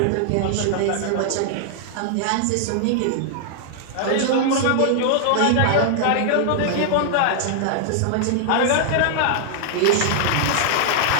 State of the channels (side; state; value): both; different; correlation -0.01